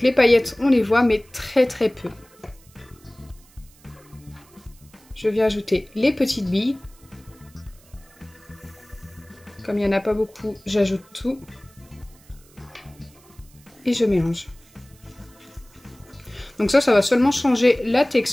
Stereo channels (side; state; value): right; noise; hiss, 27 dB below the sound